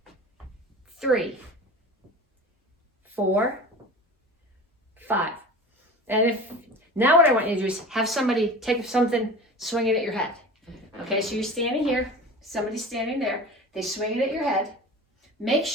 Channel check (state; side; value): normal; both; correlation 0.36